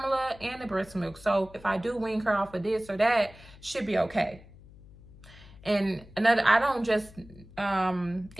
and the breast milk. So if I do wean her off of this or that, she'll be okay. And another, I don't just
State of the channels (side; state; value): left; noise; hum, 21 dB below the sound